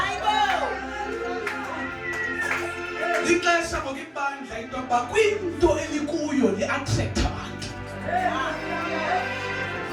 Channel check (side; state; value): both; identical; correlation 1.00